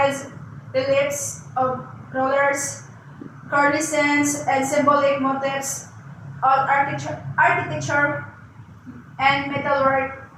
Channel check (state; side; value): identical; both; correlation 1.00